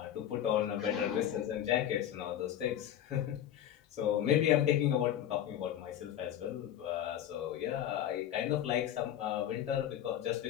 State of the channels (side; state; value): right; quieter; 10.9 dB